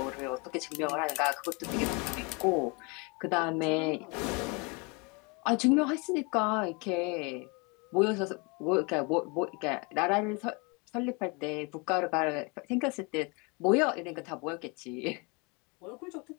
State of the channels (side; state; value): right; quieter; 30.3 dB